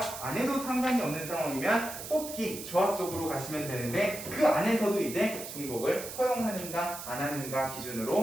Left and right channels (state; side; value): noise; right; hiss, 10 dB below the sound